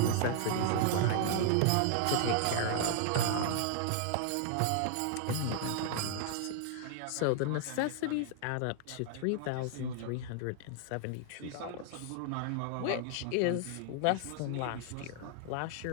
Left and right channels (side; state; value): both; different; correlation -0.01